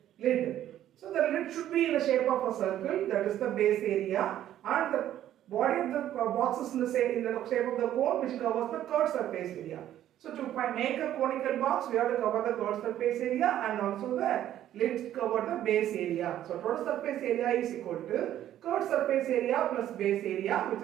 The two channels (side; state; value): left; quieter; 12.0 dB